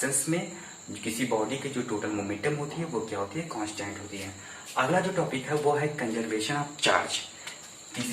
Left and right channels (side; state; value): both; identical; correlation 1.00